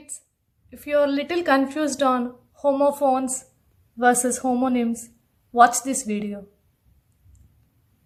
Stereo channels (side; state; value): both; identical; correlation 1.00